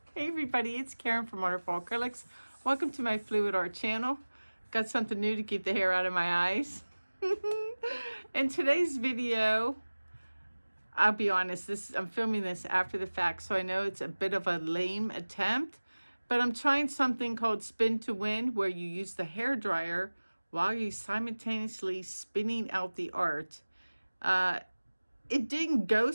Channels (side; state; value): both; inverted; correlation -1.00